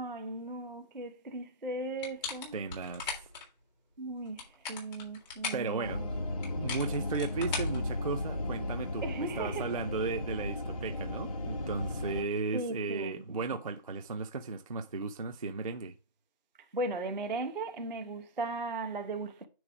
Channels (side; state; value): both; inverted; correlation -0.32